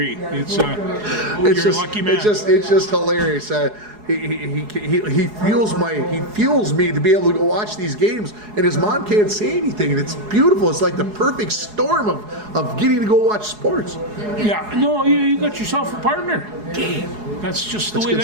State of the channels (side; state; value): left; late; 4.8 ms